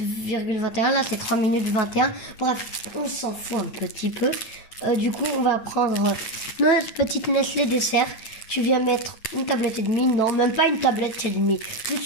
Là, c'est 3 minutes 21. Bref, on s'en fout un petit peu. Du coup, on va prendre notre petite Nestlé dessert. Tu viens mettre une tablette et demie. Non, même pas une tablette et demie.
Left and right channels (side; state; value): right; late; 9.3 ms